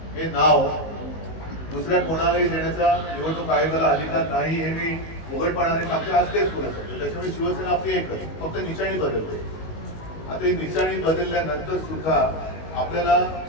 हे नाव दुसऱ्या कोणालाही देण्याचा निवडणूक आयोगाला अधिकार नाही हे मी उघडपणाने सांगते, आज तेच बोलत होते. त्याच्यामुळे शिवसेना आपली एकच, फक्त निशाणी बदलते. आता ही निशाणी बदलल्यानंतर सुद्धा आपल्याला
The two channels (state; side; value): late; right; 19 ms